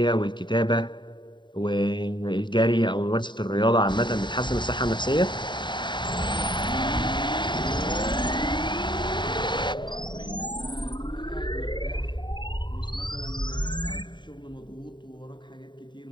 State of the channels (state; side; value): late; right; 0.22 ms